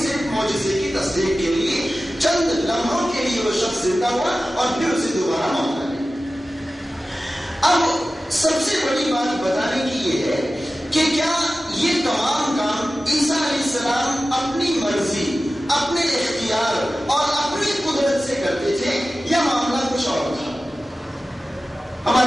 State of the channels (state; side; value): normal; both; correlation 0.95